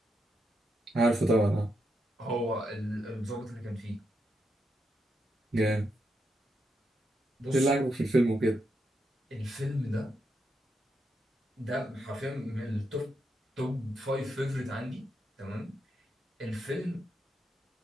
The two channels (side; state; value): both; normal; correlation 0.82